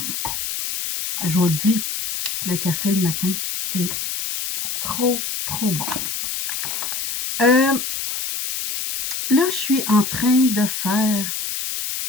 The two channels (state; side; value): noise; left; hiss, 4 dB below the sound